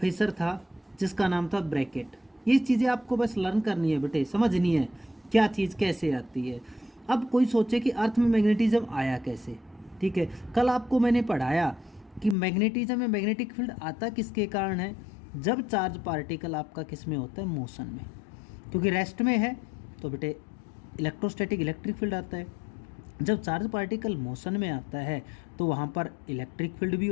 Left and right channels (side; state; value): right; drops out; at 12.4 s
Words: था जिसका नाम था ब्रैकेट। ये चीज़ें आपको बस लर्न करनी है बेटे, समझनी है क्या चीज़ कैसे आती है। अब कोई सोचे कि अर्थ में मैग्नेटिज्म आया कैसे, ठीक है। कल आपको मैंने पढ़ाया कि मैग्नेटिज्म में मैग्नेटिक फील्ड आता किसके कारण है, जब चार्ज पार्टिकल आपका किस में होता है, मोशन में, क्योंकि रेस्ट में है तो बेटे इलेक्ट्रोस्टैटिक इलेक्ट्रिक फील्ड आता है। जब चार्ज पार्टिकल मोशन में आता है तो वहाँ पर इलेक्ट्रिक फील्ड भी